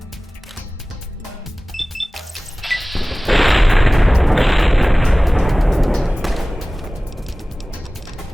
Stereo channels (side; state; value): both; normal; correlation 0.98